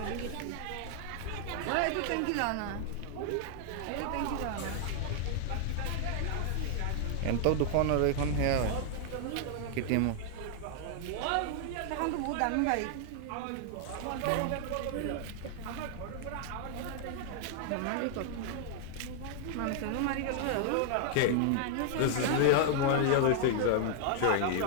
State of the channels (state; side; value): different; both; correlation 0.00